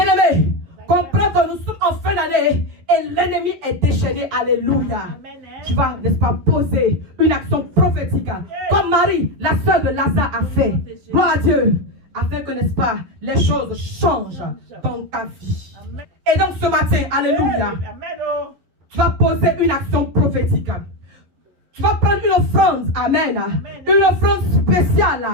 comprends que nous sommes en fin d'année et l'ennemi est déchaîné. Alléluia. Tu vas, n'est-ce pas, poser une action prophétique comme Marie, la sœur de Lazare, a fait. Gloire à Dieu. Afin que, n'est-ce pas, les choses changent dans ta vie. Et donc ce matin, alléluia, tu vas poser une action prophétique. Tu vas prendre une offrande, amen, une offrande spéciale.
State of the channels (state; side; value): late; left; 11 ms